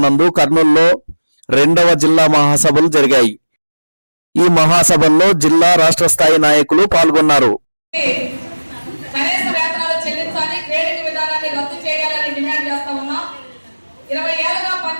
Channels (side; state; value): both; inverted; correlation -1.00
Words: నందు కర్నూలులో 2వ జిల్లా మహాసభలు జరిగాయి. ఈ మహాసభల్లో జిల్లా రాష్ట్ర స్థాయి నాయకులు పాల్గొన్నారు. కనీస వేతనాలు చెల్లించాలి, గ్రేడింగ్ విధానాన్ని రద్దు చేయాలని డిమాండ్ చేస్తా ఉన్నాం. 20 ఏళ్లుగా